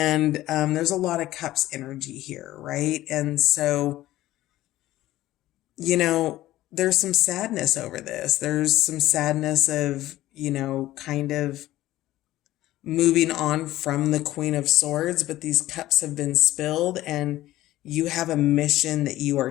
there's a lot of Cups energy here, right? And so, there's some sadness over this. There's some sadness of, kind of moving on from the Queen of Swords, but these cups have been spilled and you have a mission that you are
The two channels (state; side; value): quieter; right; 15.4 dB